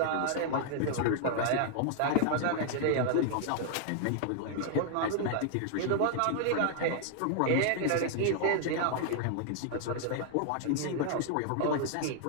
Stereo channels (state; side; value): different; both; correlation 0.00